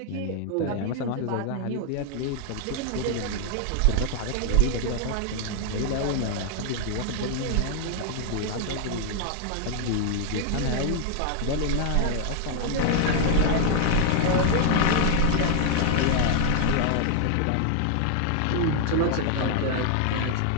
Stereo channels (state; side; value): different; both; correlation 0.00